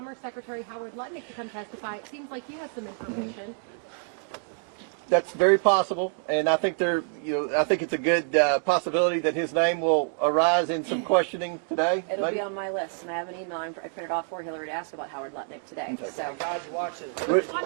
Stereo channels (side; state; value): left; silent; 57 dB below the other